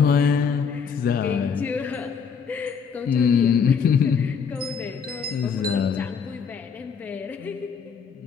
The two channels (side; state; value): right; quieter; 6.4 dB